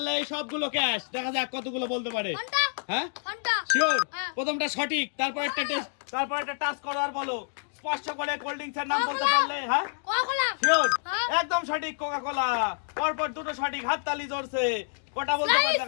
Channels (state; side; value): silent; right; digital silence